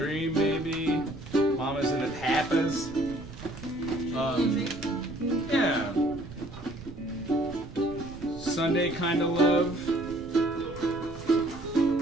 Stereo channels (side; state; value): right; noise; rumble, 15 dB below the sound